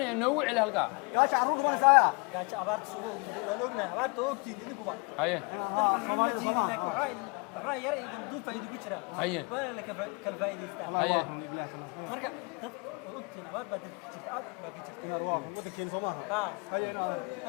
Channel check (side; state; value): right; quieter; 32.0 dB